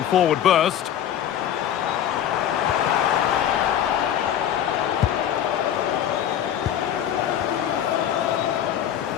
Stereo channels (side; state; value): right; quieter; 10.3 dB